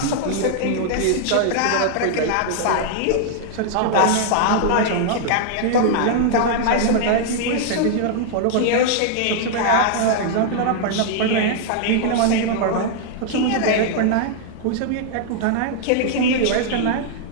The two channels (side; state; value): both; different; correlation -0.01